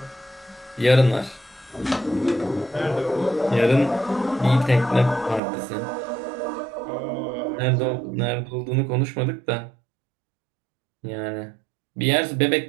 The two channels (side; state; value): left; drops out; at 5.4 s